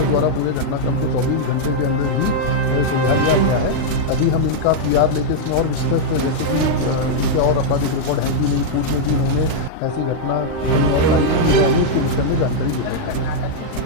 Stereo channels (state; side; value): late; right; 39 ms